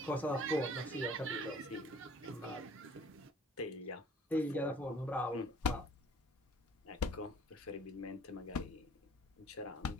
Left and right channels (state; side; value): normal; both; correlation 0.53